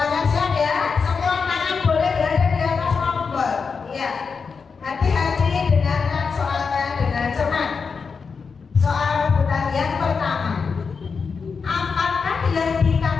siap ya. Semua tangan boleh berada di atas tombol. Ya, hati-hati dengarkan soalnya dengan cermat. Soal rebutan yang pertama, apakah yang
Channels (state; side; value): quieter; right; 5.3 dB